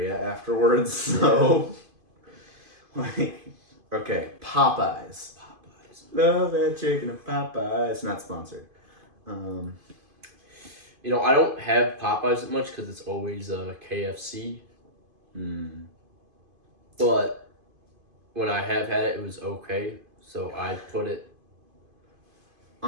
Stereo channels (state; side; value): late; left; 2.5 ms